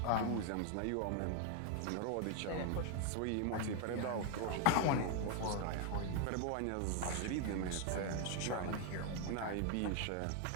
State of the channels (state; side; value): different; both; correlation 0.00